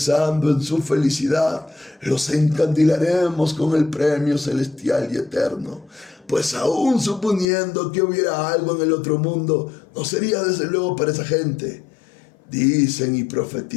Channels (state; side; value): drops out; right; at 7.5 s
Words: en su felicidad los encandilaremos con el premio celestial y eterno. Pues aún suponiendo que hubiera algo en el otro mundo, no sería desde luego para esa gente. Dicen y